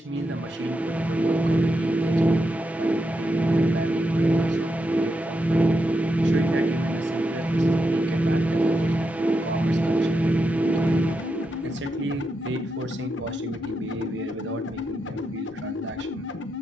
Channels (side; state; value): both; normal; correlation 0.85